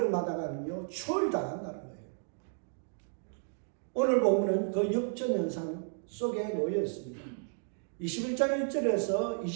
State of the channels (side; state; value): left; silent; 56 dB below the other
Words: 추월당한다는 거예요. 오늘 본문은 그 역전 현상 속에 놓여 있습니다. 21장 1절에서